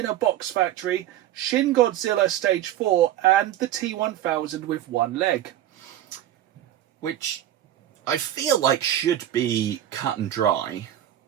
a Box Factory, Shin Godzilla Stage 4, and the T-1000 with one leg. Which I feel like should be cut and dry.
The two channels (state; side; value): quieter; left; 12.2 dB